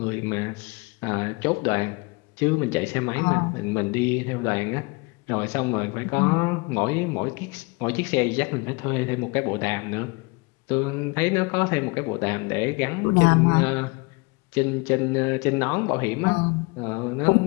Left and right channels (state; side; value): quieter; right; 28.0 dB